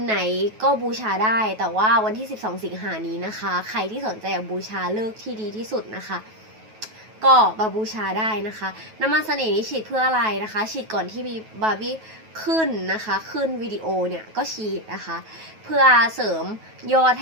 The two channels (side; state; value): left; late; 9.3 ms